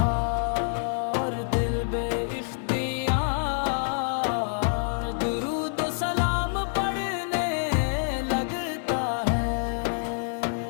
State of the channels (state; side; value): silent; right; digital silence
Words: درود و سلام پڑھنے لگتا ہے۔